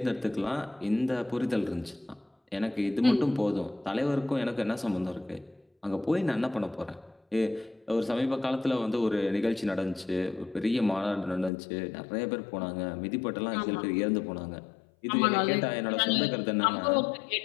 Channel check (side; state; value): right; drops out; at 11.5 s